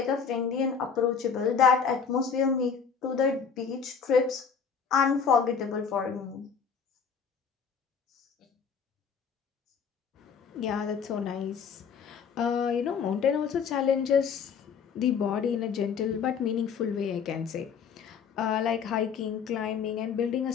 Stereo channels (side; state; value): right; quieter; 6.4 dB